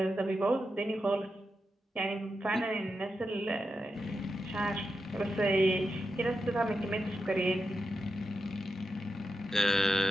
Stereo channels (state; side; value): normal; both; correlation 0.88